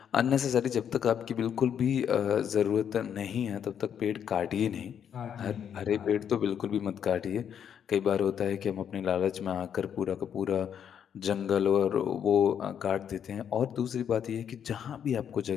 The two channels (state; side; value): quieter; right; 8.5 dB